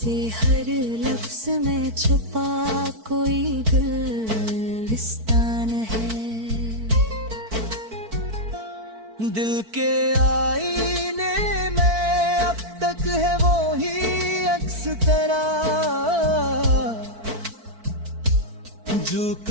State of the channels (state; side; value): late; left; 4.5 ms